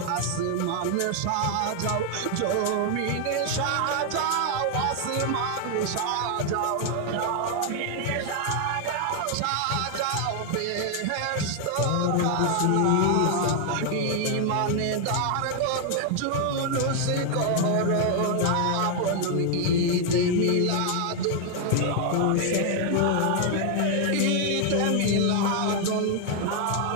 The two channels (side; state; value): both; different; correlation 0.00